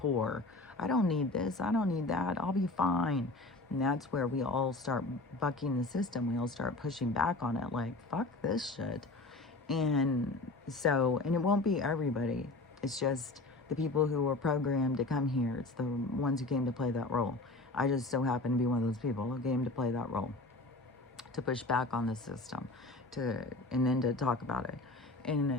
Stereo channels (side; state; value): right; quieter; 3.0 dB